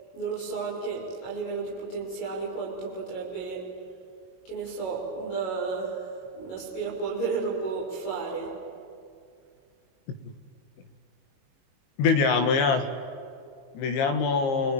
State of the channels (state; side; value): late; right; 22 ms